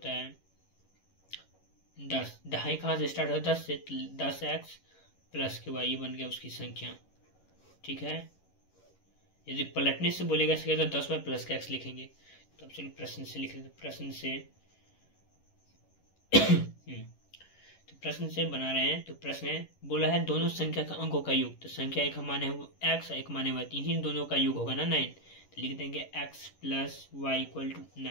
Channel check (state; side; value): late; right; 11 ms